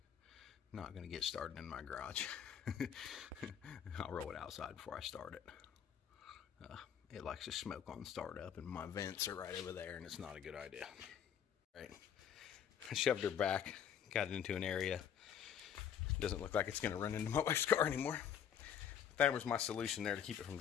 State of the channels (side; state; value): right; quieter; 8.8 dB